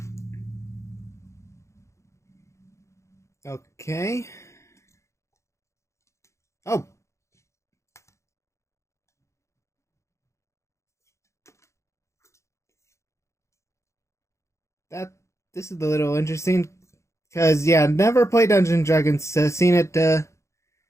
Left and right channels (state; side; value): late; right; 0.14 ms